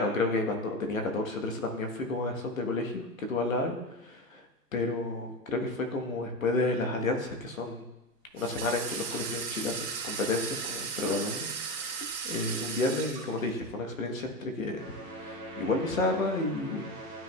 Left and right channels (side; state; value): both; normal; correlation 0.21